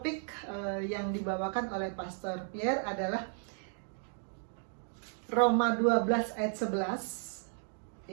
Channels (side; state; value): left; silent; 55 dB below the other